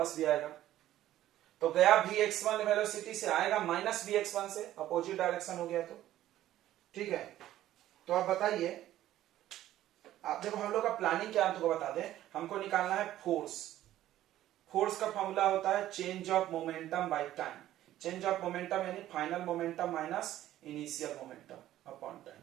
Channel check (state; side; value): quieter; left; 13.5 dB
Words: भी आएगा। तो गया vx1 वेलोसिटी से, आएगा माइनस vx1 से, अपोजिट डायरेक्शन हो गया। तो ठीक है, तो आप बताइए, आप देखो हम लोग का प्लानिंग क्या है, तुमको बता दें। हमको निकालना है फोर्स। फोर्स का फॉर्मूला होता है change of momentum by time. Change of momentum यानी final momentum minus initial momentum upon time,